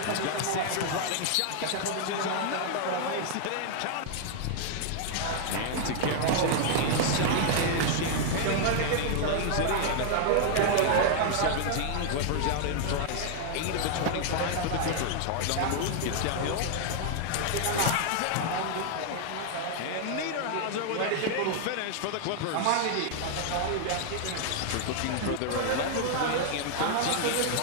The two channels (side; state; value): both; different; correlation 0.00